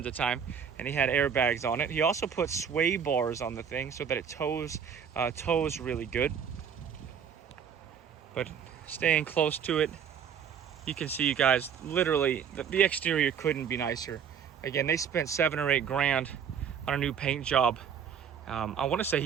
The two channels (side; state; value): left; quieter; 7.6 dB